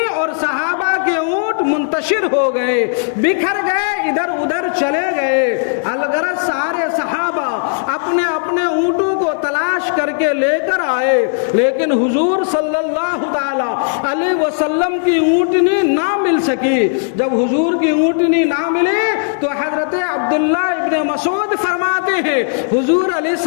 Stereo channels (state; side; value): silent; right; 62 dB below the other